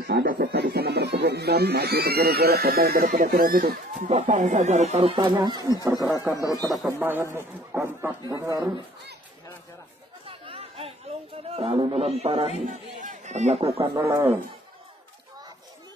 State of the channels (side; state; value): both; normal; correlation 0.54